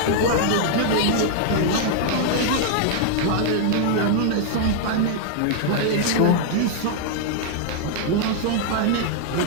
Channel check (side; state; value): both; different; correlation 0.00